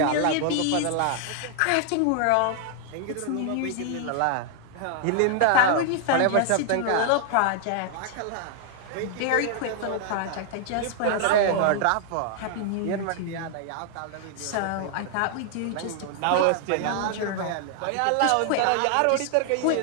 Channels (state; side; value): different; both; correlation 0.00